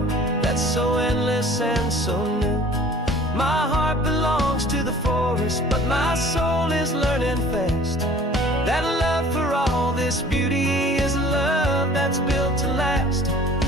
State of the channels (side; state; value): both; normal; correlation 0.49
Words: that's so endless and so new. My heart belongs to the forest, but my soul is learning fast that love for all this beauty is love that's built to last.